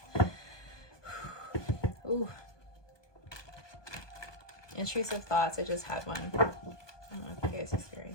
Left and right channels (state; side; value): late; right; 1.2 ms